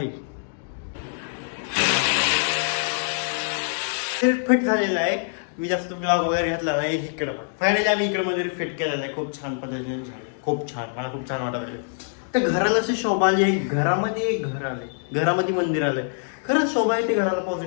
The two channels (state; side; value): silent; right; digital silence